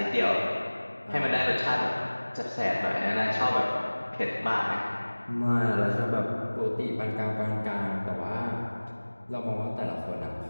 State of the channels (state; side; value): inverted; both; correlation -1.00